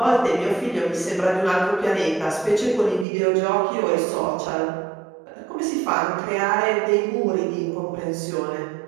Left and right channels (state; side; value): drops out; left; at 3.1 s